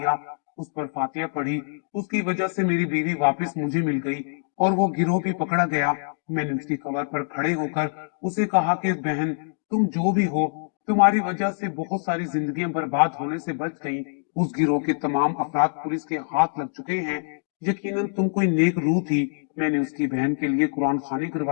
उस पर फातिया पढ़ी। उसकी वजह से मेरी बीवी वापस मुझे मिल गई और वो गिरोह भी पकड़ा गया। मैंने उसकी कब्र पर खड़े होकर उसे कहा कि बहन, तुम जो भी हो, तुम्हारी वजह से बहुत सारी जिंदगियां बर्बाद होने से बच गई। उस गिरोह के तमाम अफराद पुलिस के हाथ लग चुके हैं। यकीनन तुम कोई नेक रूह थी। मैंने उसकी बहन के लिए कुरान खानी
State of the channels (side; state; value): right; silent; digital silence